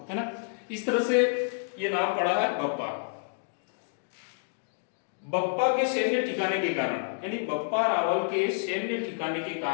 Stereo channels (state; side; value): silent; right; digital silence